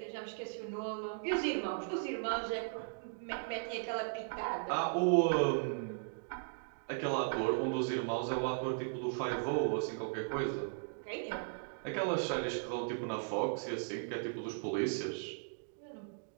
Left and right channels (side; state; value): left; silent; digital silence